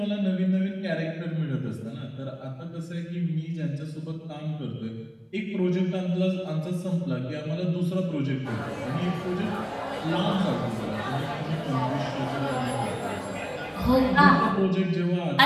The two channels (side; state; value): both; identical; correlation 1.00